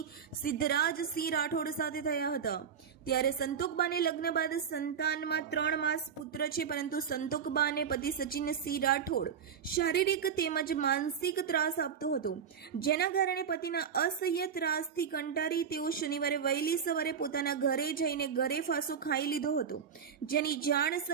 સિદ્ધરાજસિંહ રાઠોડ સાથે થયા હતા. ત્યારે સંતોકબાને લગ્ન બાદ સંતાનમાં 3 માસ પુત્ર છે, પરંતુ સંતોકબાને પતિ સચિનસિંહ રાઠોડ શારીરિક તેમજ માનસિક ત્રાસ આપતો હતો, જેના કારણે પતિના અસહ્ય ત્રાસથી કંટાળી તેઓ શનિવારે વહેલી સવારે પોતાના ઘરે જઈને ઘરે ફાંસો ખાઈ લીધો હતો, જેની જાણ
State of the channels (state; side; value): quieter; left; 7.2 dB